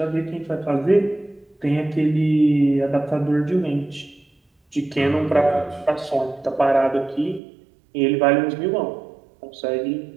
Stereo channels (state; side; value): drops out; left; at 7.4 s